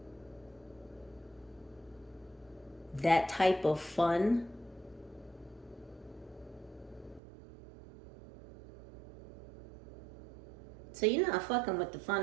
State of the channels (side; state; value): left; drops out; at 7.2 s